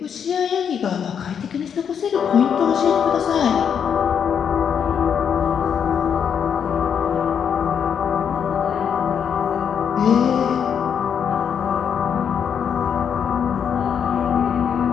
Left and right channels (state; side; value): quieter; right; 7.7 dB